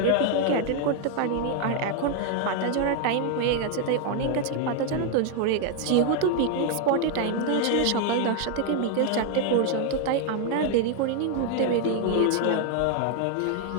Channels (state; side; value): different; both; correlation 0.00